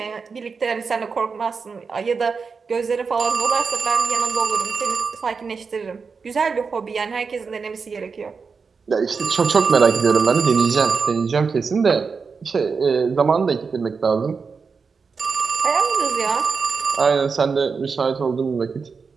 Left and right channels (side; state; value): left; quieter; 5.2 dB